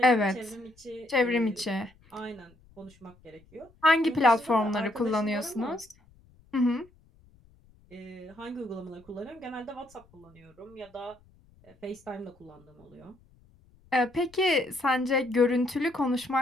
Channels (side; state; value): left; noise; rumble, 29 dB below the sound